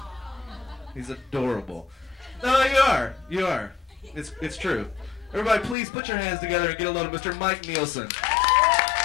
He's adorable. No, you are. It's true. Everybody, please put your hands together and get a load of Mr. Mike Nielsen.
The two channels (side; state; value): right; drops out; at 5.8 s